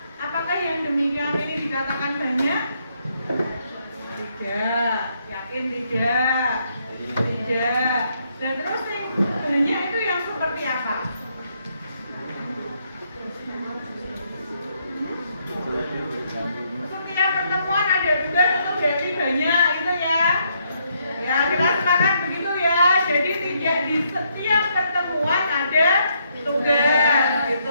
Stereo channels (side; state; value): both; inverted; correlation -0.74